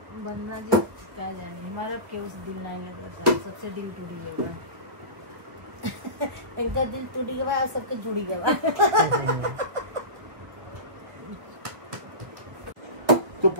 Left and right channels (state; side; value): late; left; 1.5 ms